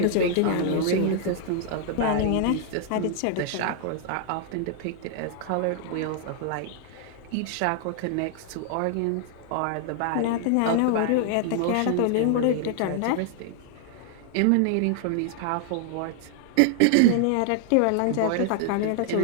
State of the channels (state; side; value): different; both; correlation 0.00